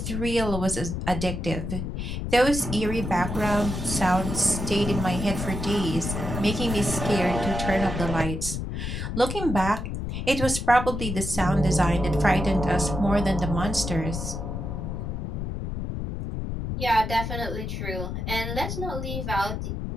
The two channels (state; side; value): noise; left; rumble, 4 dB below the sound